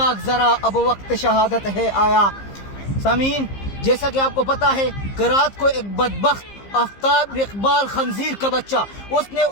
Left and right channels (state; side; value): late; right; 15 ms